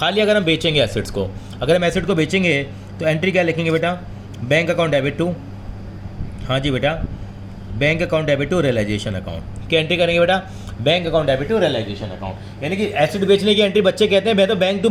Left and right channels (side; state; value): both; identical; correlation 1.00